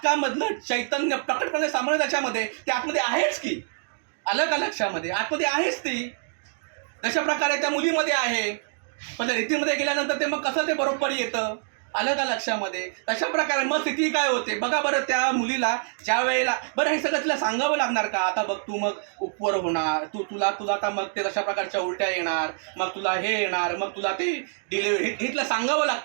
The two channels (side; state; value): left; silent; digital silence